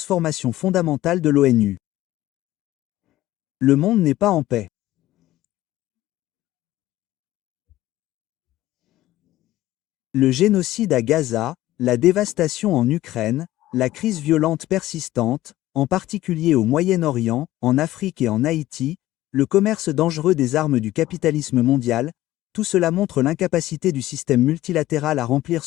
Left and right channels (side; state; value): right; quieter; 15.5 dB